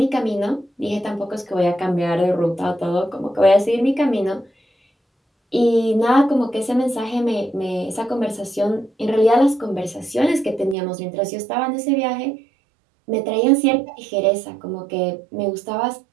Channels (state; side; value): drops out; left; at 10.8 s